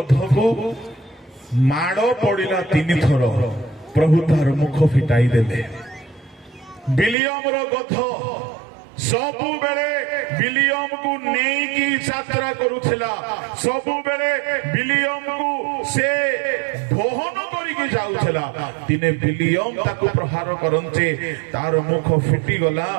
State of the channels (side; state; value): left; drops out; at 7.2 s